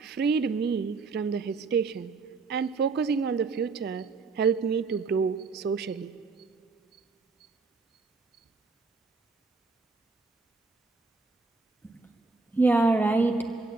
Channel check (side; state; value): left; quieter; 4.2 dB